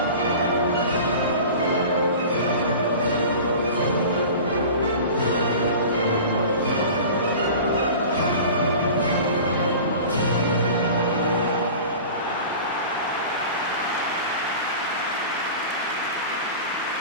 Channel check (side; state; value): both; inverted; correlation -0.37